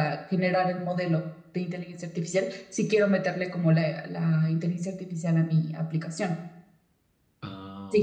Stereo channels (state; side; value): identical; both; correlation 1.00